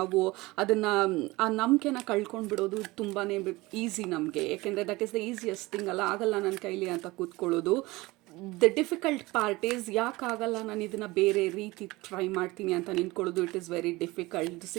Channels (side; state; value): left; quieter; 21.2 dB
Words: ಅದನ್ನು, ಆ ನಂಬಿಕೆನ ಕಳ್ಕೊಂಡು ಬಿಡೋದು ತುಂಬಾ ಈಸಿ ನಮಗೆ. ಯಾಕೆಂದರೆ that is the easiest thing ಅಲ್ಲ. ಆಗಲ್ಲ ನನ್ನ ಕೈಲಿ ಅಂತ ಕೂತ್ಕೊಳ್ಳೋದು. ದ ಡಿಫಿಕಲ್ಟ್ ಪಾರ್ಟ್ ಈಸ್ ಯಾಕಾಗಲ್ಲ ನಾನು ಇದನ್ನು ಬೇರೆ ರೀತಿ ಟ್ರೈ ಮಾಡ್ತೀನಿ ಅಂತ ನಿಂತ್ಕೊಳ್ಳೋದು. It is very difficult.